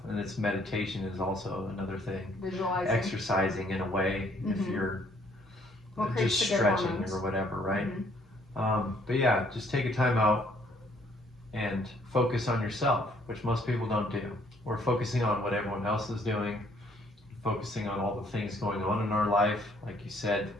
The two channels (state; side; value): normal; both; correlation 0.64